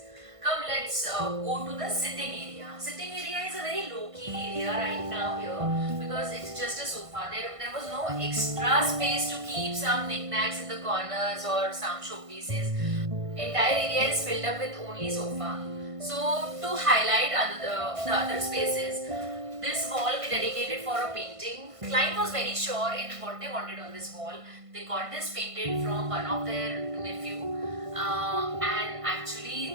Come, let's go to the sitting area. Sitting area is a very low-key area right now here because it's just a sofa. There was no extra space to keep some knickknacks in the corners or some showpieces. Entire area is filled up with only sofa. So to highlight the other spaces, this wall we dedicated for a painting. Client was very sure in what they wanted on this wall. They got this painted from one of their nephew, and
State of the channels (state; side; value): late; left; 1.5 ms